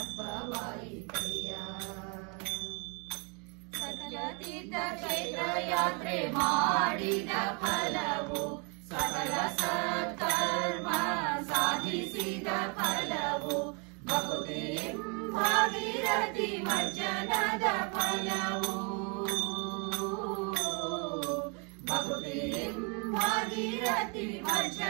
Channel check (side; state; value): left; quieter; 33.5 dB